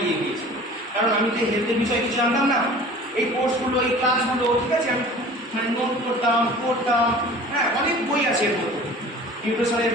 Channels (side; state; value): both; normal; correlation 0.44